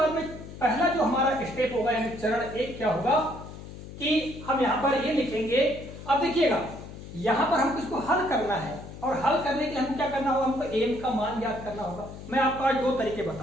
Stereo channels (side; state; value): left; noise; hum, 13 dB below the sound